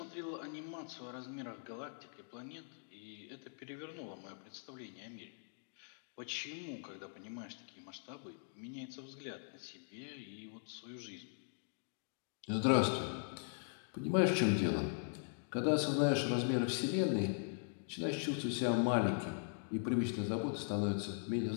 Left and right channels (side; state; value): right; silent; digital silence